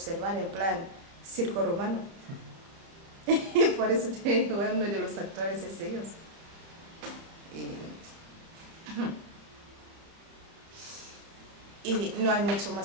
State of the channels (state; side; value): late; left; 31 ms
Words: en plan circo romano. Y por eso uno de los actores es ellos. Y no hay mucho